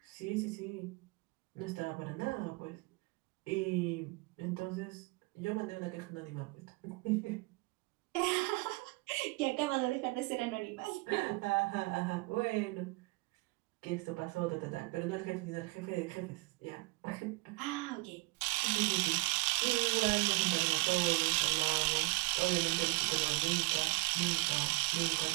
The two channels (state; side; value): quieter; left; 26.5 dB